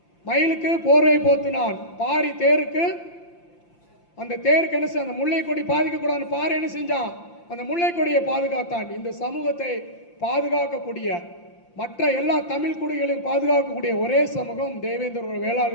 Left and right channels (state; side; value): late; right; 5.8 ms